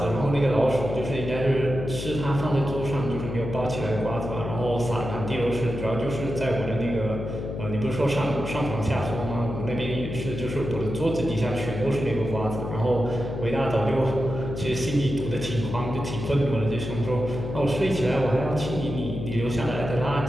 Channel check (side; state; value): left; noise; hum, 6 dB below the sound